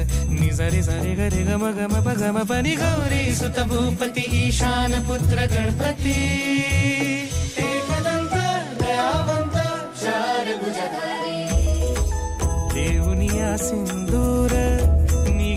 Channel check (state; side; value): identical; both; correlation 1.00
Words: नि सरी सरी गरी गम गम पगम पनी। गौरी सुत भूपती ईशान पुत्र गणपती, एकदंत दयावंत चार भुजधारी। देऊनिया सिंदूर